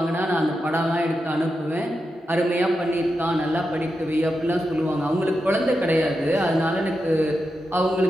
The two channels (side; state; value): both; normal; correlation 0.88